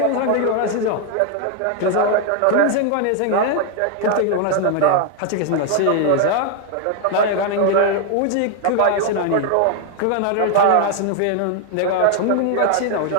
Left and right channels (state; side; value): different; both; correlation 0.00